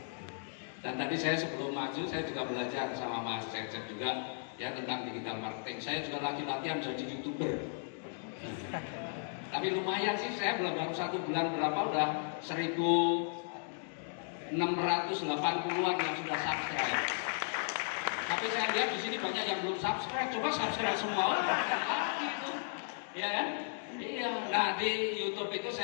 Dan tadi saya sebelum maju saya juga belajar sama Mas Cecep juga ya tentang digital marketing. Saya juga lagi latihan jadi YouTuber. Tapi lumayan sih, saya baru 1 bulan berapa udah 1.680-an yang sudah subscribe. Tapi saya lihat di sini banyak yang belum subscribe. Coba subscribe semua. Gitu. Ya kan? Iya, nah di YouTube itu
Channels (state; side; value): silent; right; digital silence